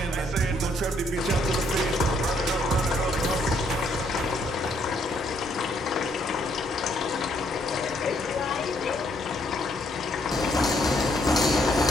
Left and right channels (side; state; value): both; normal; correlation 0.70